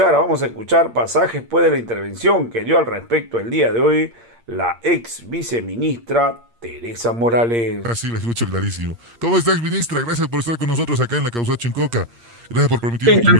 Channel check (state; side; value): late; left; 8.6 ms